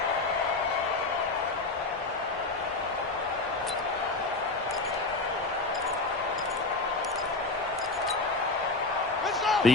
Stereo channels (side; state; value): right; quieter; 3.5 dB